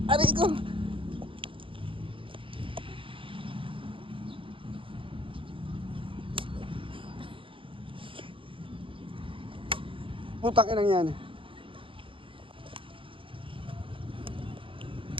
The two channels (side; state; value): left; late; 0.25 ms